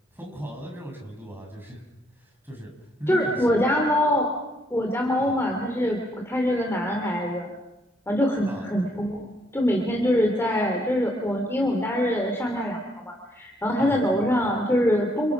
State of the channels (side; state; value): both; normal; correlation 0.71